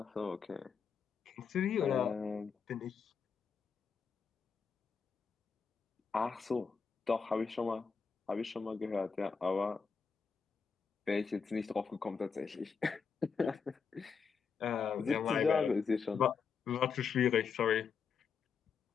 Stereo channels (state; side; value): quieter; right; 5.9 dB